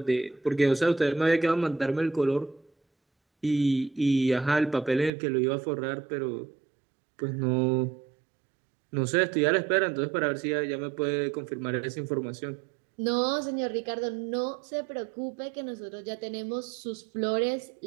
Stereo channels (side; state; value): left; drops out; at 5.1 s